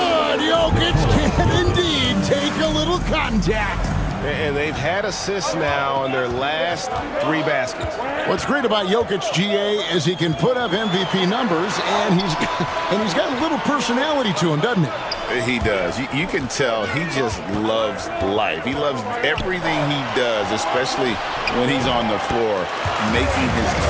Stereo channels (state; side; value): identical; both; correlation 1.00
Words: Jokic can indeed take a little contact. And they've had assists now in their last 3 baskets. What's great about Jokic, GA, is he can put up MVP numbers, and he's got a little personality to him, doesn't he? He does. You can tell he just loves life. He loves everything he does, especially when he's on the floor, making his